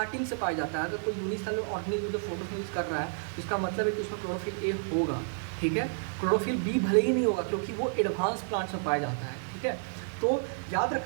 से पाया जाता है। अगर कोई यूनिसेलुलर ऑर्गेनिज्म जो फोटोसिंथेसिस कर रहा है, इसका मतलब है कि उसमें क्लोरोफिल ए होगा। ठीक है, क्लोरोफिल बी भले ही नहीं होगा, क्योंकि वो एडवांस प्लांट्स में पाया जाता है। ठीक है, तो याद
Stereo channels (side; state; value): left; silent; digital silence